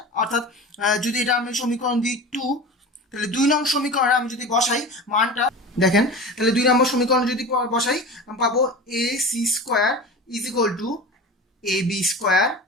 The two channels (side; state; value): both; normal; correlation 0.32